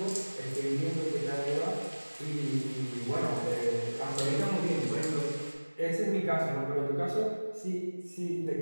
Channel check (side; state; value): both; inverted; correlation -1.00